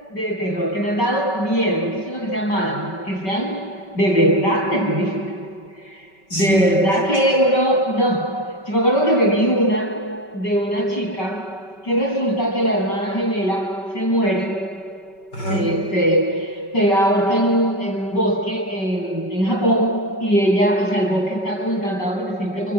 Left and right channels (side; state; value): right; late; 5.2 ms